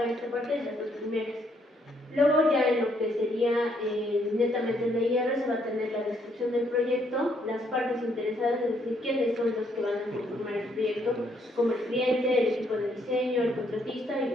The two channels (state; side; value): normal; both; correlation 0.71